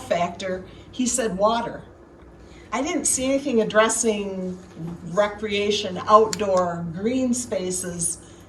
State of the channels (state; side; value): identical; both; correlation 1.00